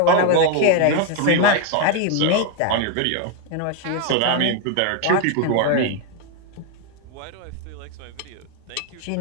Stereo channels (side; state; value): both; different; correlation 0.01